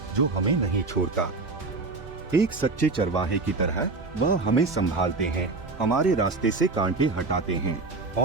जो हमें नहीं छोड़ता। एक सच्चे चरवाहे की तरह वह हमें संभालते हैं, हमारे रास्ते से कांटे हटाते हैं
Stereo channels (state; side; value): quieter; left; 3.7 dB